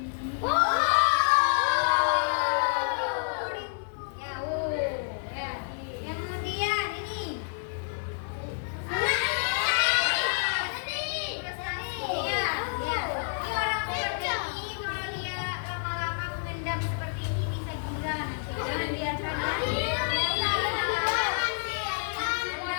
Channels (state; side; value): silent; right; digital silence